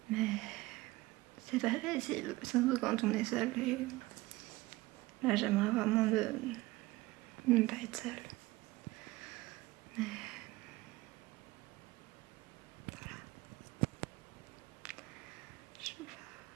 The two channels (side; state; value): left; quieter; 19.8 dB